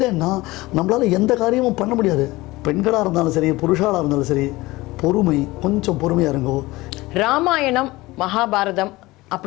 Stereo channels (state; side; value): quieter; right; 20.1 dB